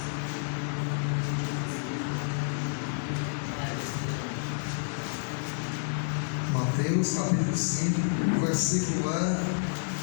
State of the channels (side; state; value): right; silent; digital silence